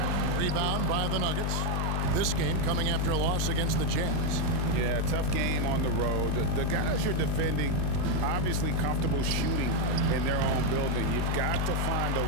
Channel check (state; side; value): different; both; correlation 0.02